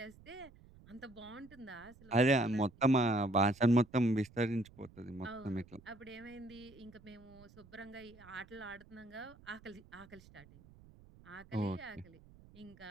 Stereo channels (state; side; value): noise; right; rumble, 23 dB below the sound